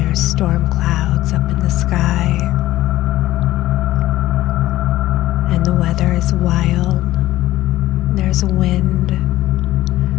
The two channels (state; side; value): quieter; right; 15.5 dB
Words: are storm clouds up in the sky, and the weather is wild. There's wind,